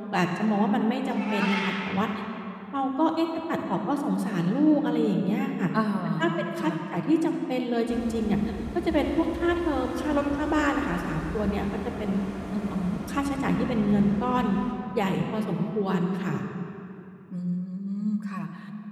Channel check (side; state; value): both; identical; correlation 1.00